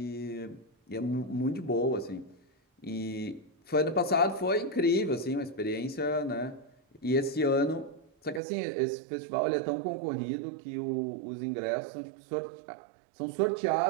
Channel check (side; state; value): left; drops out; at 8.4 s